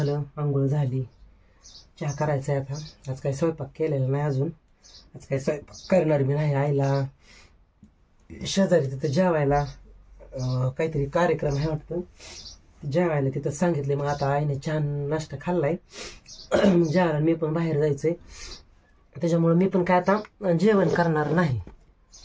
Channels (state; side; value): identical; both; correlation 1.00